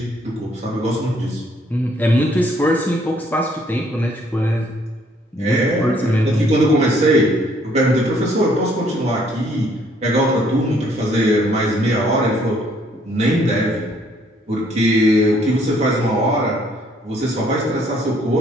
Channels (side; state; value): both; normal; correlation 0.65